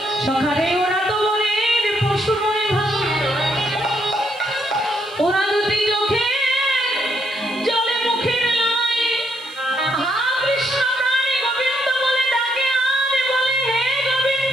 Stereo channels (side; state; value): right; noise; hiss, 24 dB below the sound